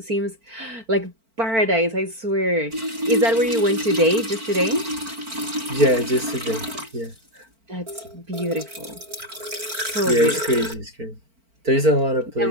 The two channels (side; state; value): left; late; 4.4 ms